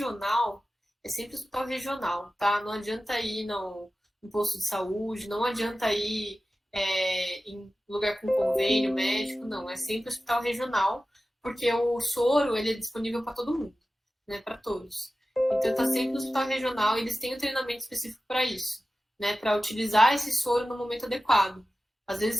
é sempre hospital regional, tá? Não adianta ir no posto de saúde, não adianta ir em lugar com convênio médico, não. É sempre hospital regional, porque o soro ele é disponível para todo mundo, né, para todos. Então, está sempre no hospital regional e eles têm um treinamento específico para isso, né? Para utilizar esse soro no momento adequado. Às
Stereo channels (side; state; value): both; normal; correlation 0.95